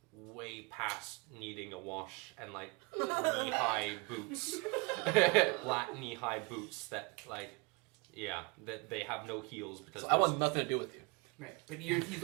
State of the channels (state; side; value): quieter; left; 28.5 dB